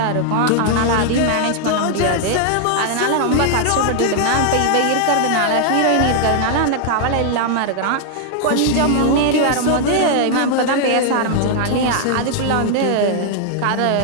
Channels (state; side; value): different; both; correlation 0.00